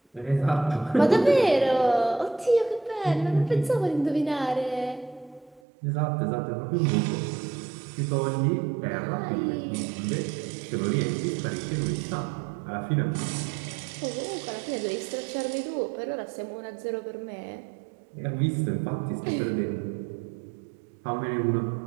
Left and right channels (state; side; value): drops out; left; at 5.6 s